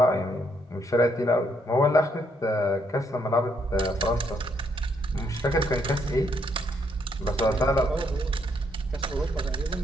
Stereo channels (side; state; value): both; normal; correlation 0.73